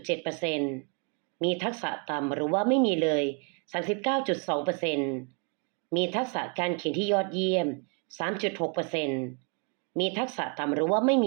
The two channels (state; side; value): quieter; left; 35.7 dB